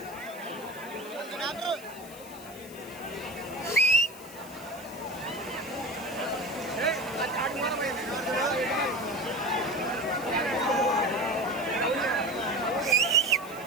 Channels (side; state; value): left; noise; hiss, 18 dB below the sound